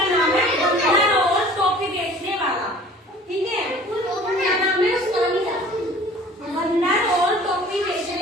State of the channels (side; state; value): both; normal; correlation 0.47